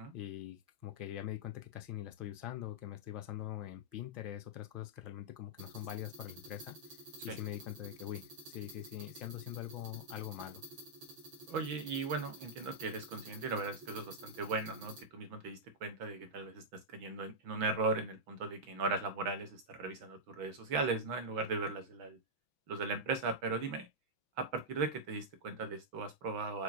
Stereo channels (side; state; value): left; late; 6.1 ms